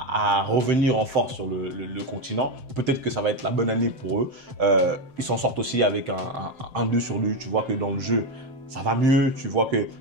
revenir en force sur le continent. Peut-être que ça va être la bonne année pour eux. Ils s'en sortent aussi avec un 2 sur 2. Tu vois que dans le jeu, ça va mieux, tu vois qu'il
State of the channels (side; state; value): left; late; 7.7 ms